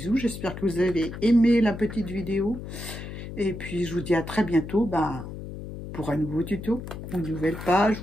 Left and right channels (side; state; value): left; noise; hum, 10 dB below the sound